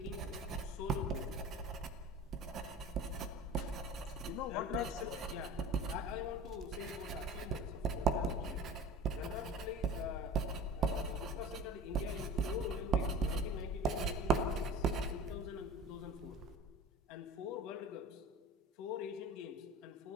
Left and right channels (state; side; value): normal; both; correlation 0.38